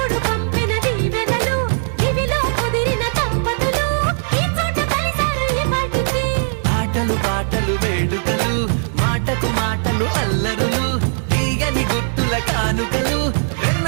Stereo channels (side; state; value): left; silent; digital silence